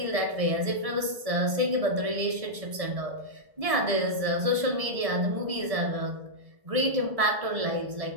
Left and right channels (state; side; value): late; left; 1.7 ms